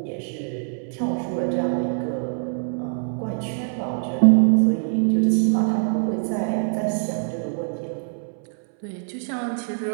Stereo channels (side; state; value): left; silent; 63 dB below the other